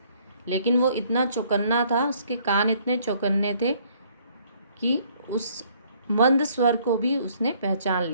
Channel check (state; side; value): inverted; both; correlation -0.62